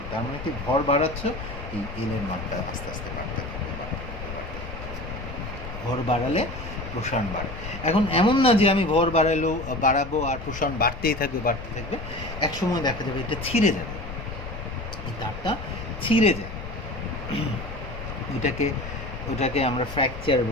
তার মানে কি ভর বাড়াচ্ছ, এই এলের মানটা আস্তে আস্তে বাড়তে থাকবে, বাড়তে থাকবে, বাড়তে থাকবে। ভর বাড়ালে প্রসারণ বাড়ে। এখন এমন না যে আমি ভর বাড়াবো আর প্রসারণ বাড়তেই থাকবে, বাড়তে থাকবে। একসময় দেখা যাবে এটা ছিঁড়ে যাবে, এই তারটা ছিঁড়ে যায়। ওটাকে আমরা ফ্র্যাকচার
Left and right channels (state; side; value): noise; left; rumble, 10 dB below the sound